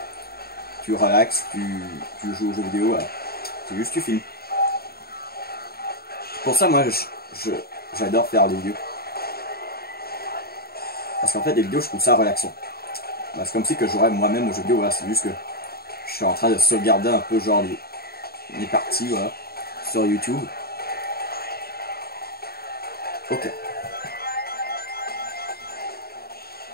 tu relaxes, tu joues aux jeux vidéo, voilà. C'est juste que tu filmes. Pour ça, moi, j'adore faire des vidéos. Parce qu'en fait, les vidéos, je trouve ça relaxant. Bah, c'est comme si que j'aurais moi-même aux jeux vidéo, voilà, c'est juste que je suis en train de sauvegarder un peu genre les parties, voilà, sur YouTube. Ok.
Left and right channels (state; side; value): late; right; 0.45 ms